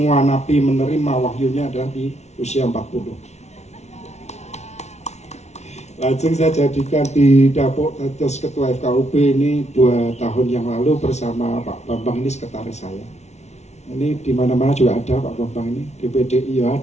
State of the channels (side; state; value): right; late; 0.32 ms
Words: nabi menerima wahyunya adalah di usia 40. Lajeng saya jadikan didapuk terus ketua FKUB ini 2 tahun yang lalu bersama Pak Bambang, ini sekretaris saya. Ini di mana-mana juga ada Pak Bambang ini, di PDI ya